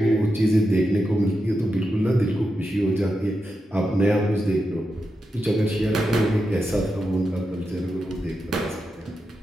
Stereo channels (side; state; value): both; normal; correlation 0.88